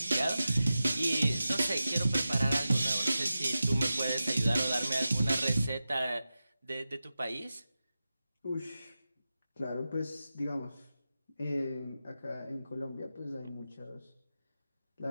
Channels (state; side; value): inverted; both; correlation -0.93